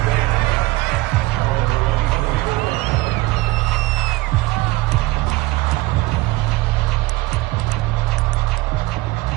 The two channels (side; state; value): left; quieter; 20.1 dB